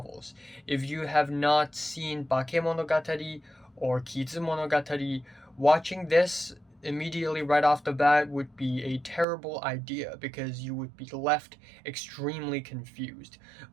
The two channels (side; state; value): left; drops out; at 9.2 s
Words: If you have not seen Bakemonogatari or Kizumonogatari, watching this immediately right off the bat would be a terrible idea because you would be left extremely confused.